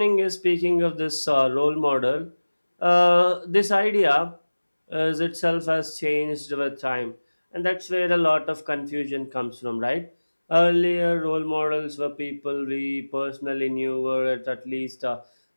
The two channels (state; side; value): inverted; both; correlation -1.00